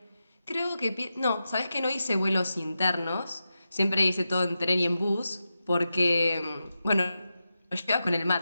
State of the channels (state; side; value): inverted; both; correlation -0.91